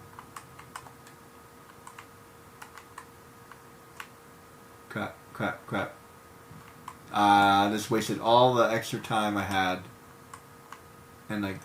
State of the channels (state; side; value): identical; both; correlation 1.00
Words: Crap. I just wasted all the extra time I had. And like